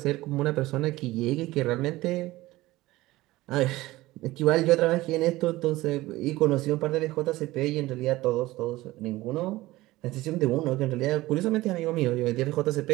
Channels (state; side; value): quieter; left; 18.3 dB